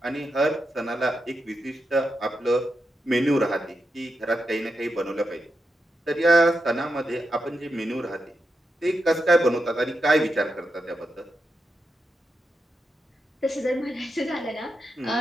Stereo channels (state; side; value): normal; both; correlation 0.86